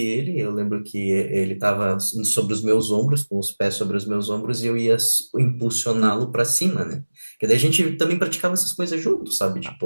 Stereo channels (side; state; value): both; inverted; correlation -1.00